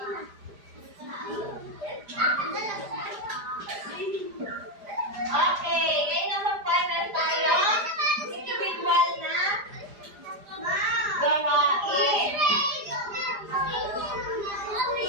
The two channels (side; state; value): left; late; 4.9 ms